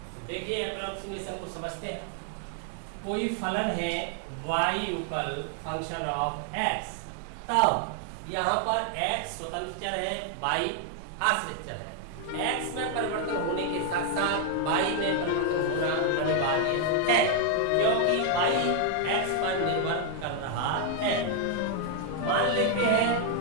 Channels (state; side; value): different; both; correlation 0.00